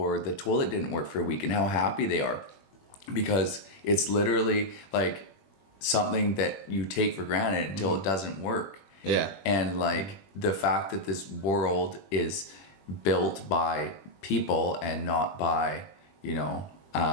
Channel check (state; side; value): late; right; 21 ms